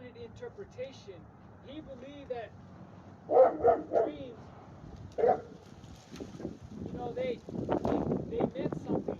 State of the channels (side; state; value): both; identical; correlation 1.00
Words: interpretation. He believed that dreams, you know, they meant